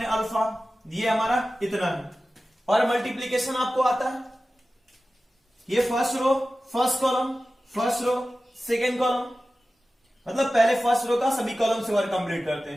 अल्फा, ये हमारा इतना है। और मल्टीप्लीकेशन आपको आता है, ये first row first column, first row second column, मतलब पहले फर्स्ट रो का सभी कॉलम से वर्क कंप्लीट करते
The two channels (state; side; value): normal; both; correlation 0.95